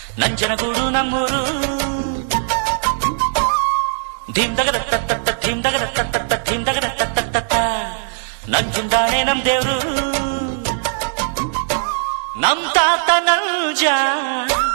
ನಂಜನಗೂಡು ನಮ್ಮೂರು ಧಿಂದಗದ ತತ್ತ ಧಿಂದಗದ ತತ್ತ ಧಿಂದಗದ ತತ್ತ ನಂಜುಂದಾಣೆ ನಮ್ ದೇವ್ರು ನಮ್ ತಾತ ನಂಜ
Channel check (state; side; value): silent; left; digital silence